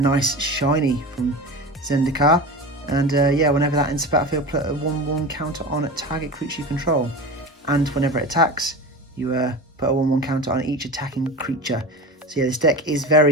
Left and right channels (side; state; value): both; normal; correlation 0.29